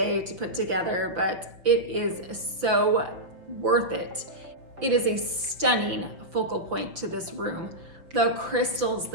to put together, but it is so worth it. It is a stunning focal point to this room. The crystals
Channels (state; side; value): late; left; 5.9 ms